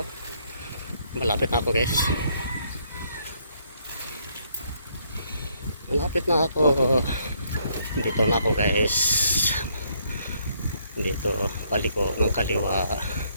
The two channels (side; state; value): both; inverted; correlation -0.70